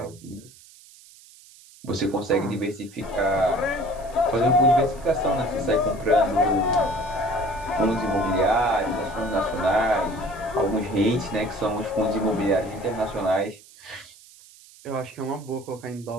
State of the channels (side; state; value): right; noise; hiss, 23 dB below the sound